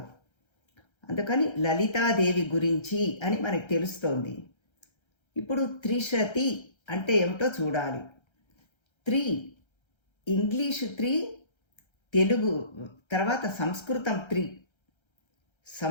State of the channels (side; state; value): right; late; 1.3 ms